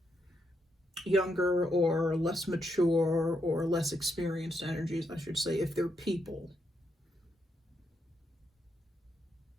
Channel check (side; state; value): both; normal; correlation 0.79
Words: Younger or less mature or less experienced energies, I should say, if they're people.